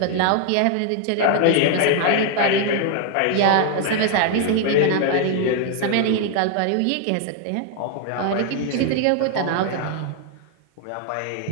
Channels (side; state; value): both; different; correlation 0.00